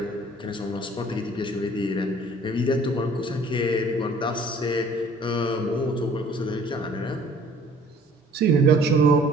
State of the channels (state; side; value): normal; both; correlation 0.54